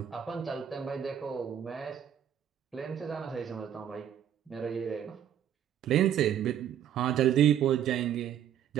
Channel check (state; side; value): quieter; left; 9.8 dB